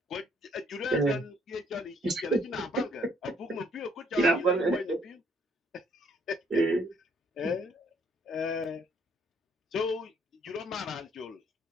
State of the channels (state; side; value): normal; both; correlation 0.66